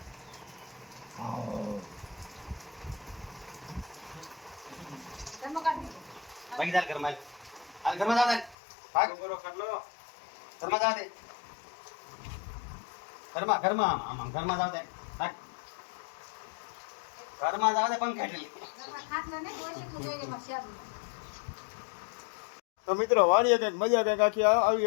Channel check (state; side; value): drops out; right; at 8.6 s